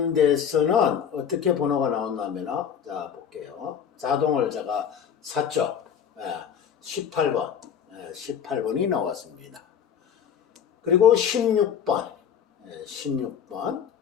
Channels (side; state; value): right; quieter; 8.2 dB